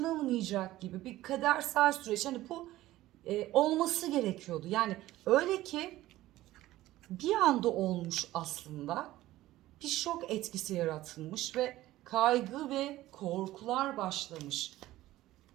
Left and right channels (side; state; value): left; quieter; 15.9 dB